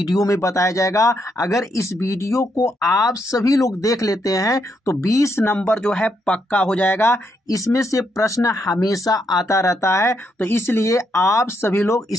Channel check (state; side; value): normal; both; correlation 0.78